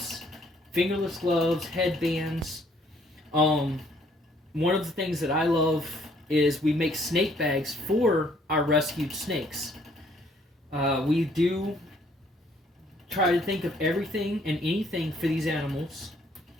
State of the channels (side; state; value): both; normal; correlation 0.64